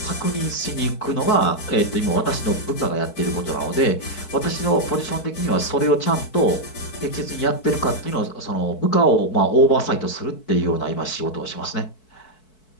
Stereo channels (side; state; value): right; late; 4.6 ms